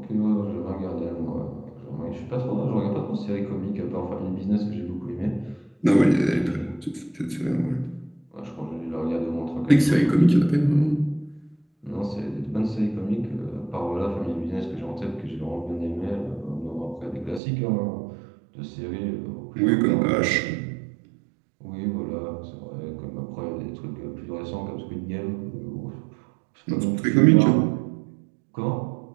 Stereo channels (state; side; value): drops out; left; at 17.4 s